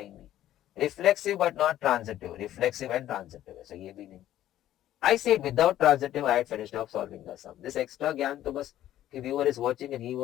नहीं. Reflexive but not transitive. Reflexive and transitive. So ये भी नहीं. I said without transitive I had finished off solving the sum. This extra ज्ञान तो बस कि viewer is watching and he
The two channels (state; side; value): quieter; right; 12.8 dB